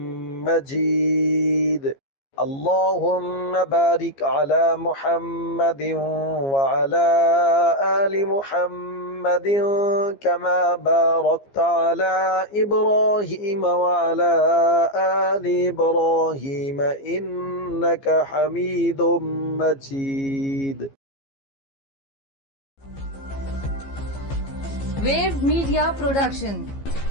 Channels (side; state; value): right; late; 15 ms